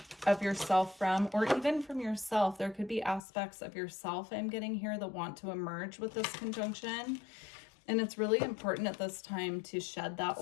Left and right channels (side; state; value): right; drops out; at 3.2 s